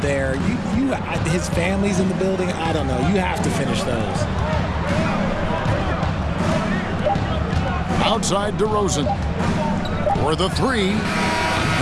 there. His family's in the building. I don't know. You have to finish those. Outside DeRozan. For the three.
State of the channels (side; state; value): both; identical; correlation 1.00